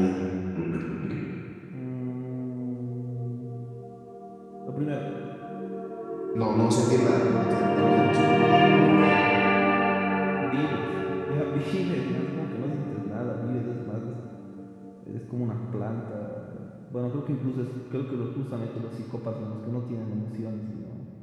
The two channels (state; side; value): identical; both; correlation 1.00